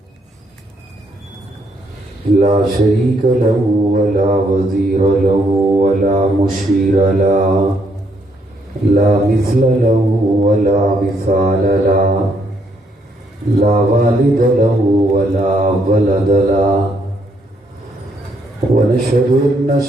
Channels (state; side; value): normal; both; correlation 0.73